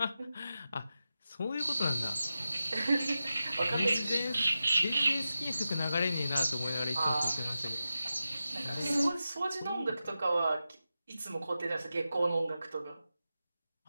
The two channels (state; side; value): inverted; both; correlation -0.91